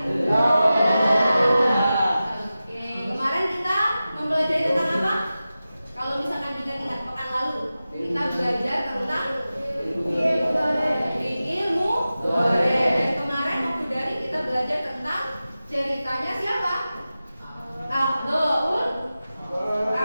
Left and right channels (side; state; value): both; inverted; correlation -0.94